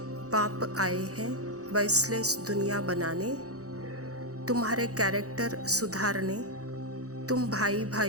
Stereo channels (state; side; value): late; left; 0.66 ms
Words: बाप आए हैं वॉइसलेस दुनिया बनाने, तुम्हारे कैरेक्टर सुधारने। तुम भाई